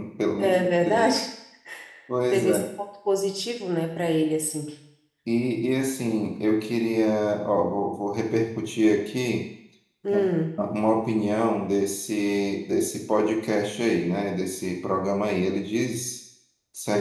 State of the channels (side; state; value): both; identical; correlation 1.00